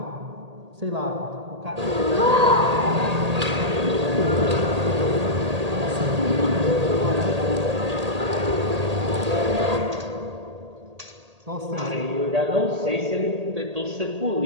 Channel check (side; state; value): left; late; 1.8 ms